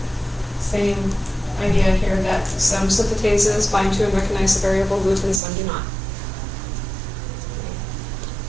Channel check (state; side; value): drops out; left; at 5.4 s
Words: Same idea here that some synthetases bind to and recognize the variable loop and some do not.